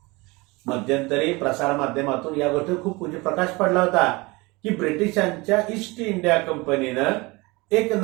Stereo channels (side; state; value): left; quieter; 24.2 dB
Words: मध्यंतरी प्रसार माध्यमातून या गोष्टीवर खूप प्रकाश पडला होता की ब्रिटिशांच्या ईस्ट इंडिया कंपनीनं एक